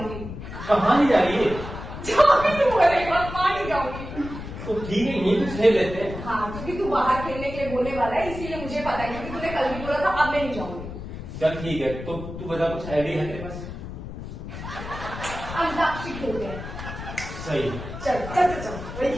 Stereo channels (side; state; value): left; noise; rumble, 9 dB below the sound